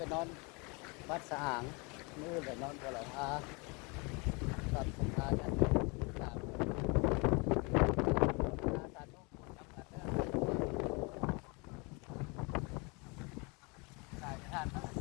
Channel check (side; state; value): right; quieter; 29.7 dB